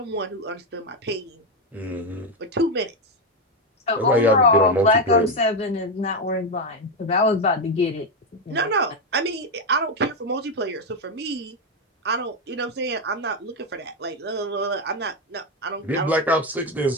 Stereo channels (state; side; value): normal; both; correlation 0.08